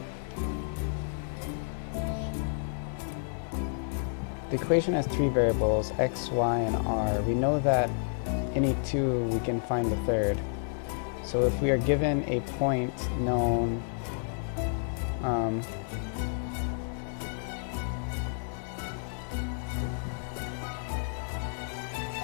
The equation has three variables, x, y, and r. We know that any two, we can find the third. So if we are given a point known so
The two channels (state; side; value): silent; right; 55 dB below the other